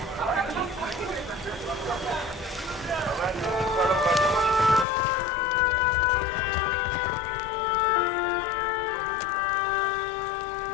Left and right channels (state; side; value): drops out; right; at 4.9 s